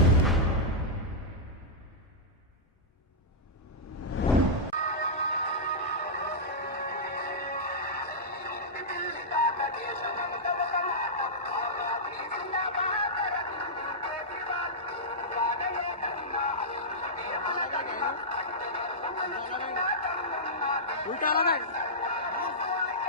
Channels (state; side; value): normal; both; correlation -0.11